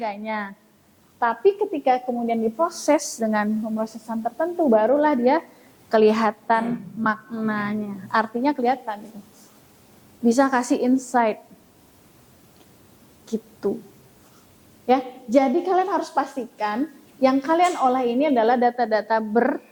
Tapi ketika kemudian diproses dengan pemrosesan tertentu, barulah dia kelihatan maknanya. Artinya kelihatan gitu. Bisa kasih insight. Gitu. Ya, jadi kalian harus pastikan yang kalian olah ini adalah data-data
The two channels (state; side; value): identical; both; correlation 1.00